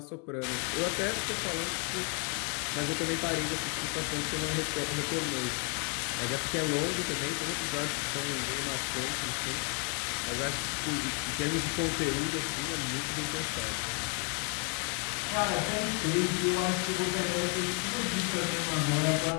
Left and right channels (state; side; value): quieter; right; 36.8 dB